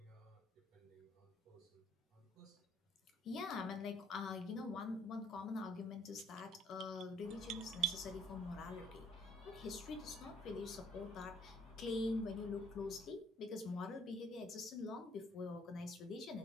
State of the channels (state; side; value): normal; both; correlation 0.63